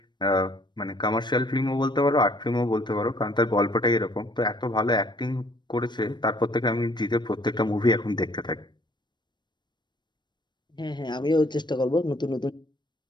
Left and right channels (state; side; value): late; right; 0.22 ms